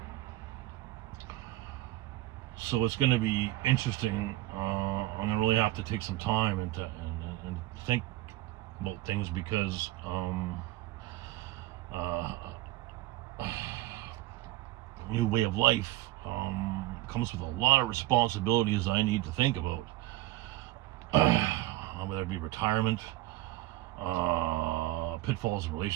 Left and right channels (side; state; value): left; quieter; 16.8 dB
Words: So it's going to be interesting. I'm going to really have to take some time and think about things, because new way of life comes with a lot of responsibilities I need to think about. Whether it be retirement, pitfalls in